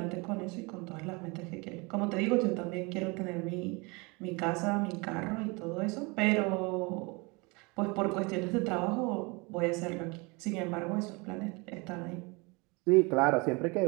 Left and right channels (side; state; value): left; quieter; 27.8 dB